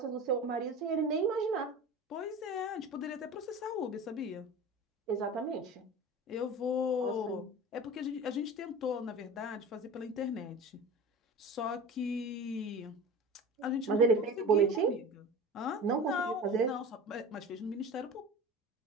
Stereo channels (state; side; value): normal; both; correlation 0.34